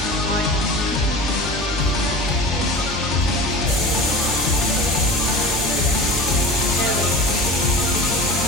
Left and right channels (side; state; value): both; normal; correlation 0.35